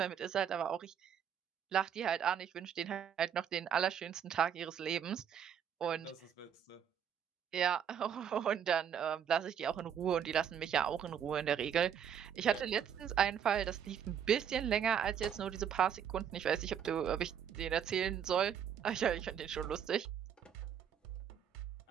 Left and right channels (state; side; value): quieter; left; 8.5 dB